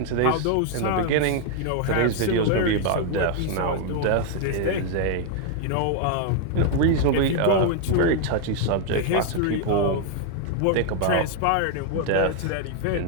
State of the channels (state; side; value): different; both; correlation 0.00